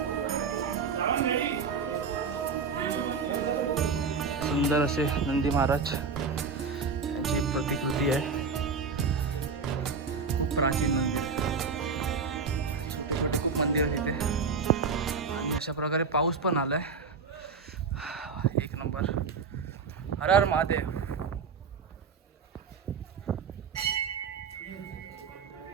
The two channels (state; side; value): quieter; left; 5.2 dB